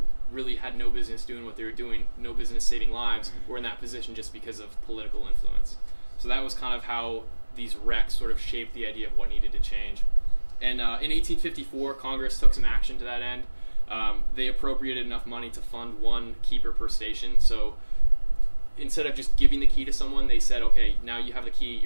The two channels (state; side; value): inverted; both; correlation -1.00